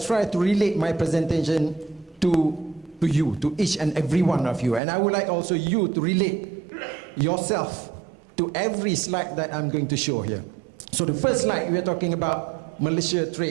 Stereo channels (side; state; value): left; drops out; at 4.8 s